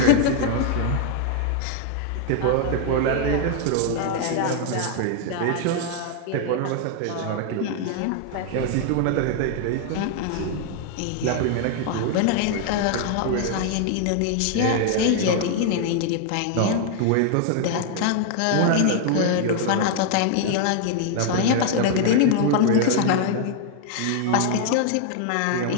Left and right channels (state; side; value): different; both; correlation 0.00